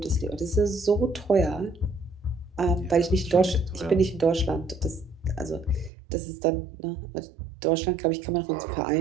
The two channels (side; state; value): left; drops out; at 5.9 s